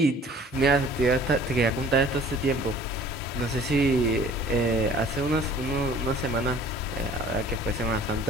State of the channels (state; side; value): normal; both; correlation 0.50